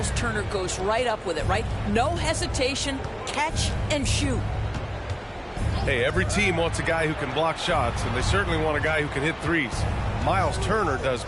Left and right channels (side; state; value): both; identical; correlation 1.00